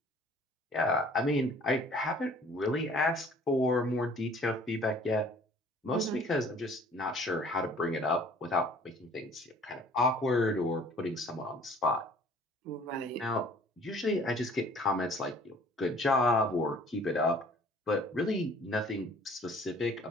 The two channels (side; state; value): both; normal; correlation 0.53